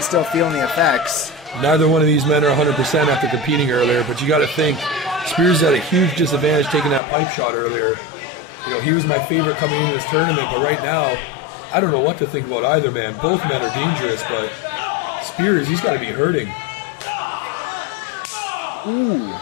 still feeling the effects. Neither one of these men are 100% after competing earlier, but you got to think Spears had a huge disadvantage taking that pipe shot earlier. You know, he was my favorite coming into this tournament, but right now, I don't know what to think about either man. Both men are dangerous, but Spears, he's got to be hurting. Ooh,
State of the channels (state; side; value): drops out; right; at 7.0 s